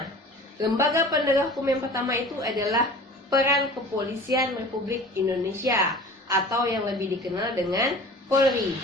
Lembaga penegak hukum yang pertama itu adalah peran Kepolisian Republik Indonesia atau yang lebih dikenal dengan Polri.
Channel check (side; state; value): both; normal; correlation 0.41